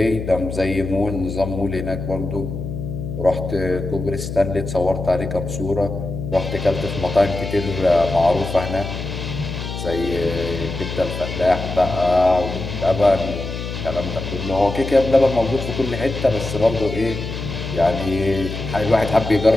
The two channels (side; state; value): left; noise; hum, 6 dB below the sound